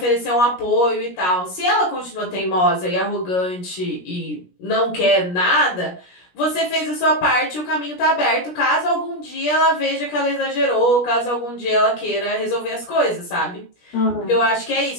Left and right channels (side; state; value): right; late; 17 ms